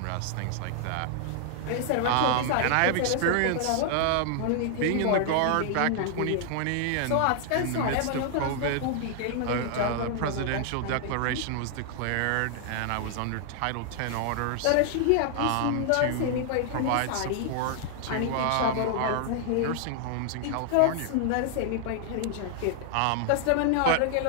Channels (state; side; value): different; both; correlation 0.00